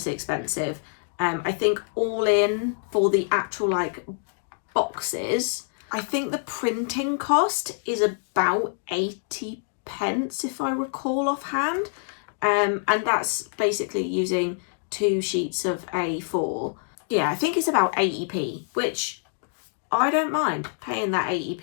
expensive. I think all in for the actual like boxes, I think the printing cost is about 80 pence if I recall offhand, and that's basically using 2 sheets of A4. Yeah, I think it's about 80p, which I don't mind paying that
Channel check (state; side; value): silent; right; digital silence